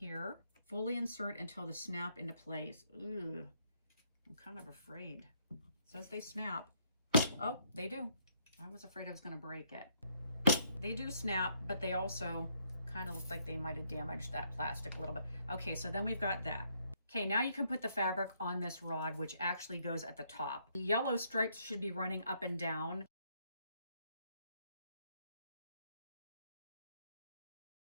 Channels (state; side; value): inverted; both; correlation -0.71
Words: Fully insert until they snap into place. Ooh, I'm kind of afraid. It says they snap. Oh, they do. I was afraid I was going to break it. They do snap, but they also kind of look like they might have damaged that plastic a little bit. Okay, so then we've got that. Okay, now you can put the fabric on this rod, which actually goes at the top. The yellow stripes should be running up and down.